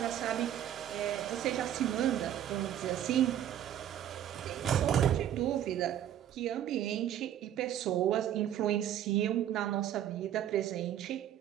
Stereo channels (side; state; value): left; quieter; 10.9 dB